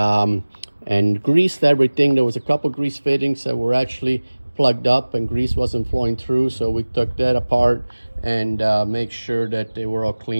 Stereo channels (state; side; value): inverted; both; correlation -1.00